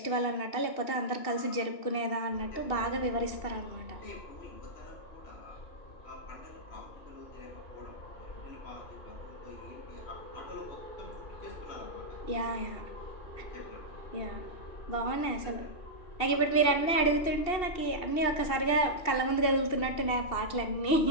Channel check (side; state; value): right; late; 2.7 ms